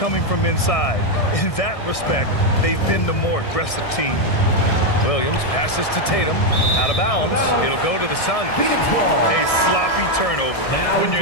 from inside. In that respect, they've been the more aggressive team. Williams passes to Tatum. Out of bounds. It'll go to the Suns. A sloppy turnover. When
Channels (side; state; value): right; late; 1.6 ms